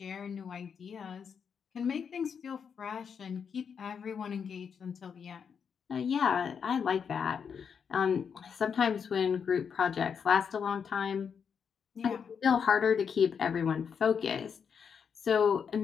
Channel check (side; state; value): right; quieter; 6.8 dB